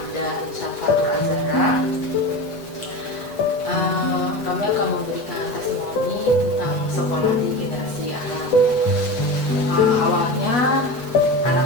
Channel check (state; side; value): late; right; 8.2 ms